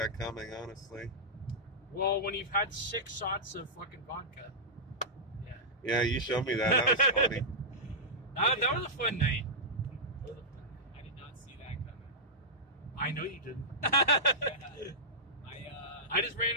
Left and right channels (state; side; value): normal; both; correlation -0.12